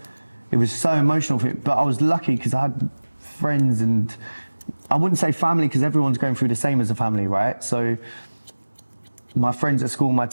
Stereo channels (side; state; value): both; inverted; correlation -1.00